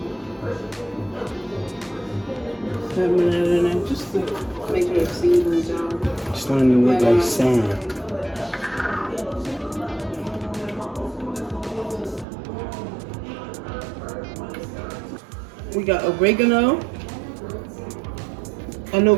Having that in there just to make sure it seasons, y'all. It's starting to look like sand. We got oregano. I know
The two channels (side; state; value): left; drops out; at 12.2 s